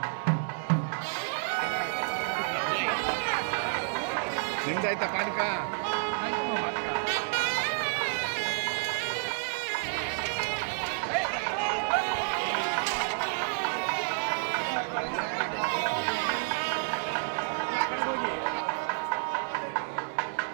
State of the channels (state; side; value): silent; left; 58 dB below the other